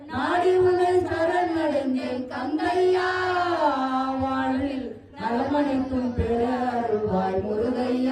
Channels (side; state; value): both; identical; correlation 1.00